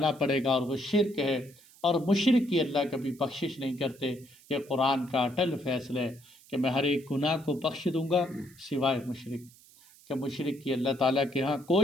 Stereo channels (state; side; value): noise; right; hiss, 25 dB below the sound